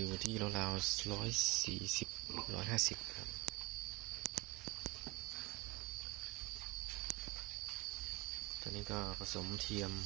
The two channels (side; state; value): left; quieter; 23.2 dB